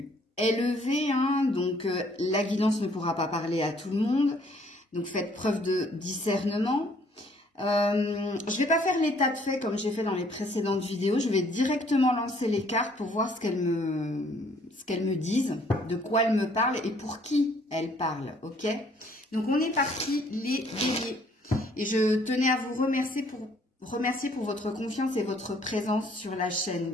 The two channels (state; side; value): normal; both; correlation 0.62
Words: élevée, donc la guidance ne pourra pas parler à tout le monde. Donc faites preuve de discernement. Je ne vais pas faire l'état de fait comme j'ai fait dans les précédentes vidéos. Je vais directement lancer les cartes pour voir ce qu'elles me disent, de quoi elles me parlent et pour qui elles parlent. Ok? Donc on est parti les béliers. Et je tenais à vous remercier pour votre confiance et votre présence sur la chaîne,